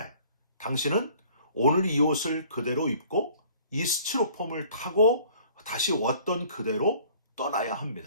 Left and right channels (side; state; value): both; inverted; correlation -0.53